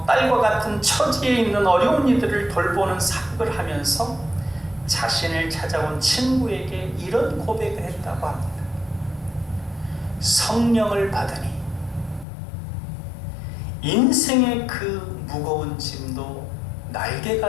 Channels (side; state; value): right; drops out; at 12.2 s